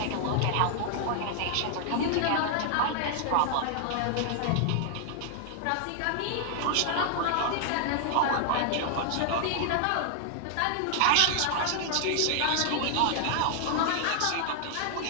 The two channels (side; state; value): both; different; correlation 0.00